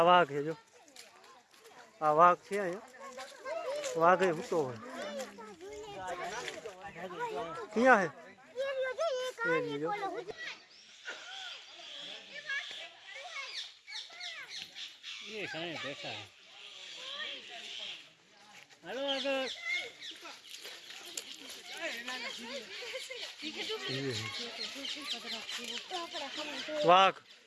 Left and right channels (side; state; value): both; identical; correlation 1.00